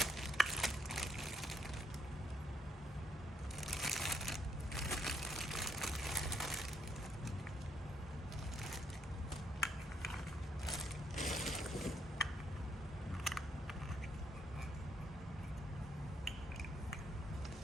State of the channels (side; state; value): both; normal; correlation 0.72